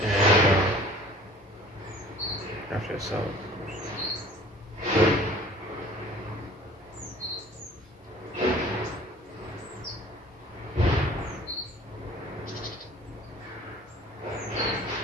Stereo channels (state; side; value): normal; both; correlation 0.49